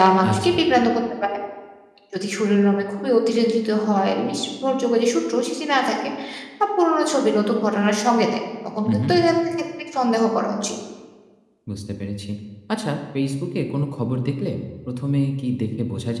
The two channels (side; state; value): both; identical; correlation 1.00